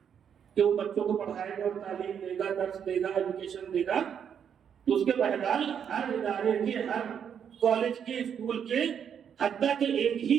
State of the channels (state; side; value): quieter; left; 8.0 dB